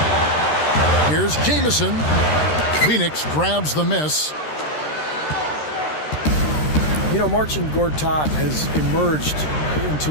Here's Jamison. Phoenix grabs the miss. You know, Marcin Gortat has emerged into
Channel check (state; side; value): late; right; 13 ms